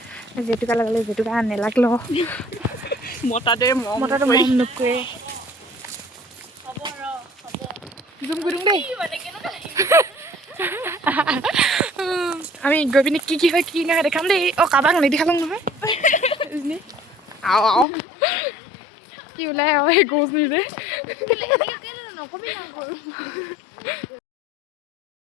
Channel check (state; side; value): drops out; right; at 17.9 s